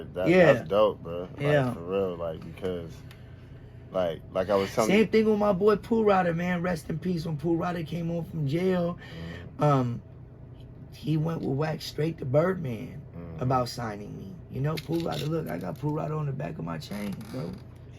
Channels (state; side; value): identical; both; correlation 1.00